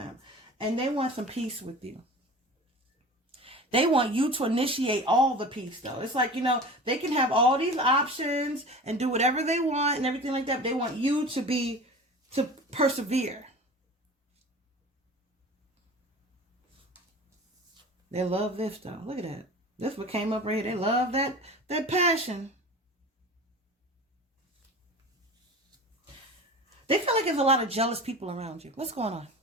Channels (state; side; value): normal; both; correlation 0.36